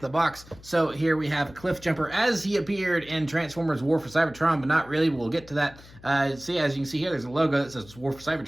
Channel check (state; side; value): noise; left; hum, 21 dB below the sound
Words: box. So here we have Cliffjumper as he appeared in Transformers War for Cybertron, but not really. We'll get to that. See, as you can see here, there's a logo that says War for